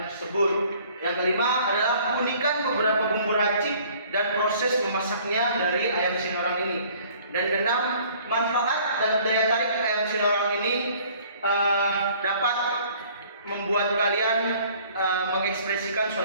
tersebut. Yang kelima adalah keunikan beberapa bumbu racik dan proses memasaknya dari ayam Sinorang ini. Dan keenam, manfaat dan daya tarik ayam Sinorang ini dapat membuat kalian mengekspresikan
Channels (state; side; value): inverted; both; correlation -0.55